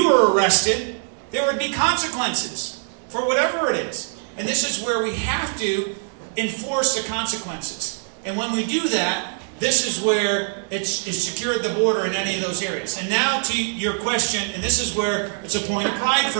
were arrested, there would be consequences for whatever it is. And this is where we have to enforce the consequences. And when we do that, this is where it's secured the border in any of those areas. And now to your question, and this is where it's a point of pride for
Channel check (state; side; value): silent; left; 64 dB below the other